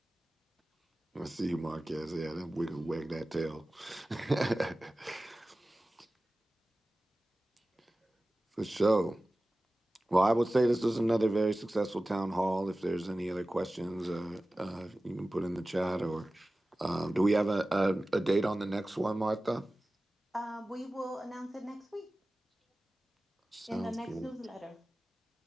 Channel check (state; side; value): normal; both; correlation 0.96